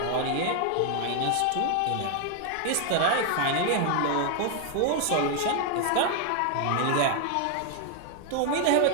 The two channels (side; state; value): both; different; correlation 0.00